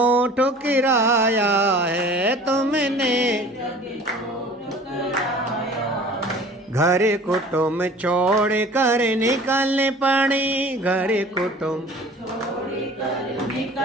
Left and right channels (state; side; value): normal; both; correlation 0.45